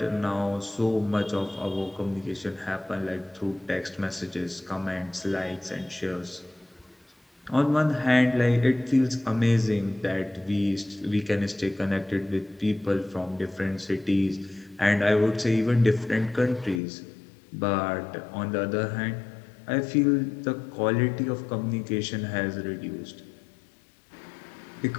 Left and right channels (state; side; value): drops out; right; at 16.8 s